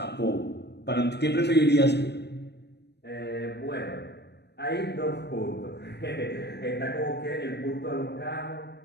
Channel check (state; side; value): late; right; 0.49 ms